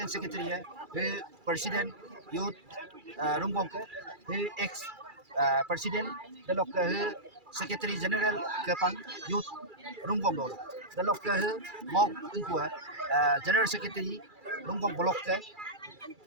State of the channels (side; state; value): left; late; 2.3 ms